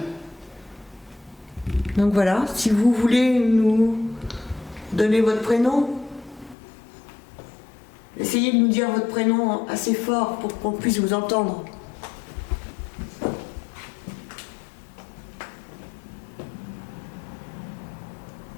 Donc voilà, si vous voulez nous donner votre prénom, essayez de nous dire votre prénom assez fort pour qu'on puisse vous entendre.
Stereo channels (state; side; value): drops out; right; at 6.6 s